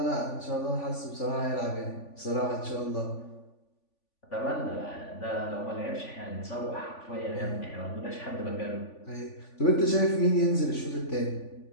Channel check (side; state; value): right; late; 3.5 ms